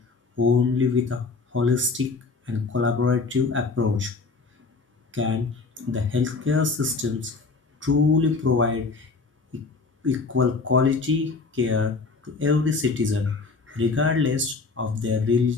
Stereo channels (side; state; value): right; quieter; 4.2 dB